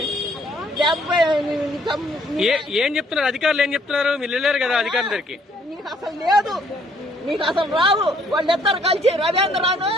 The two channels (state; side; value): normal; both; correlation 0.64